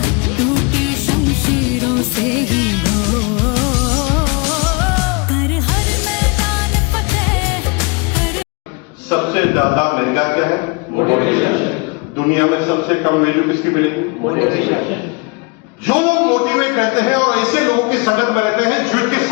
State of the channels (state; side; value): quieter; right; 29.6 dB